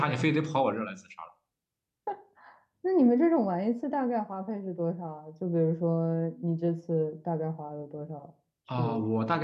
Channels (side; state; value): both; identical; correlation 1.00